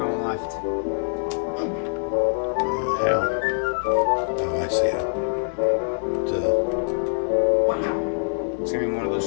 left. Yeah. Oh, I see it. It's gonna be more of those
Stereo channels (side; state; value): right; silent; digital silence